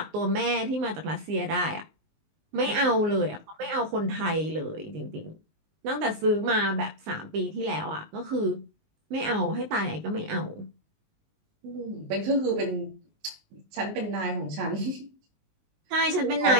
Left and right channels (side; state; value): left; late; 19 ms